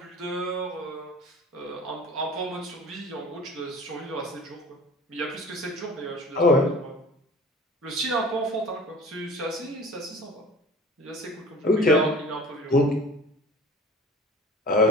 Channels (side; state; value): both; normal; correlation 0.42